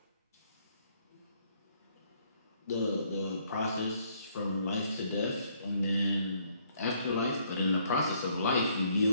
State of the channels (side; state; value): both; inverted; correlation -0.67